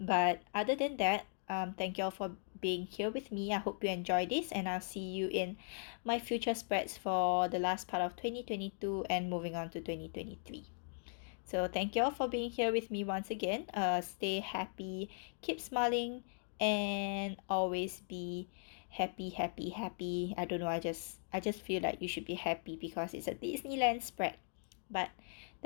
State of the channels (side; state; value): right; silent; digital silence